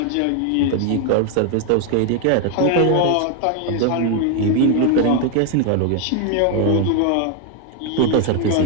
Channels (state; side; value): different; both; correlation 0.01